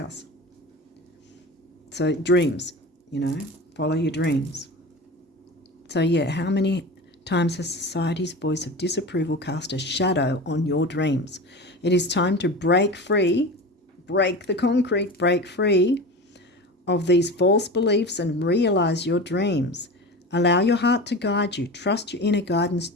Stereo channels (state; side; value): normal; both; correlation 0.30